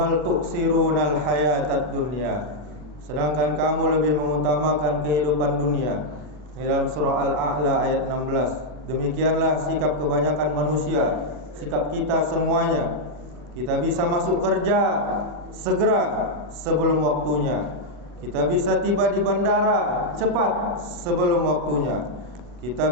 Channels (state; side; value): late; left; 40 ms